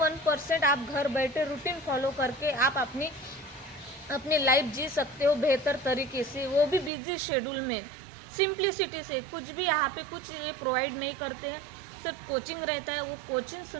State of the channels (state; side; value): drops out; left; at 6.9 s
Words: आप घर बैठे रूटीन फॉलो करके आप अपनी लाइफ जी सकते हो बेहतर तरीके से, वो भी बिजी शेड्यूल में, सिंप्लिसिटी से। कुछ भी यहाँ पे कुछ ये प्रोवाइड नहीं करते हैं, सिर्फ कोचिंग रहता है। वो कोचिंग